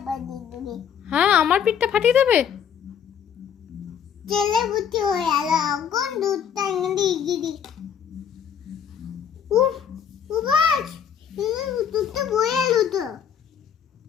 বানিয়ে দেবে। হ্যাঁ, আমার পিঠটা ফাটিয়ে দেবে। ছেলে বুঝি হয়ে গেল, কোন দুধটা এনে গিরি। উফ, উবাস, দুধটা বয়ে এলো তো।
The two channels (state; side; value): quieter; right; 8.2 dB